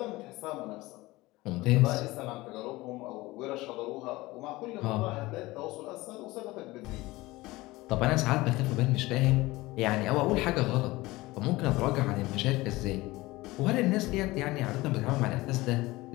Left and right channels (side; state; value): right; quieter; 20.0 dB